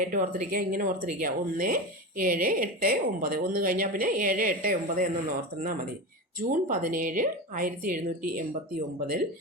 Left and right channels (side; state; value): both; normal; correlation 0.23